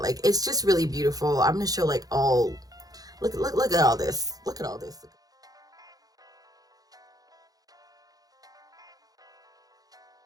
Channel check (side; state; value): left; late; 0.18 ms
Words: Like it's just really beautiful. I'm gonna show like all, look at all this, look at all this.